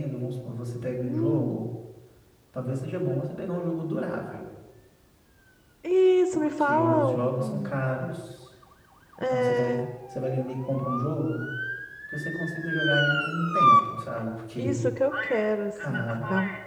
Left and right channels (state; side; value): identical; both; correlation 1.00